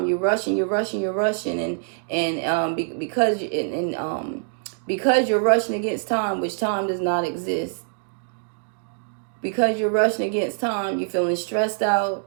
You're rushing, and because you're rushing against time, which time does not exist. Because you're rushing against time, you're feeling stressed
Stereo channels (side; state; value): left; silent; digital silence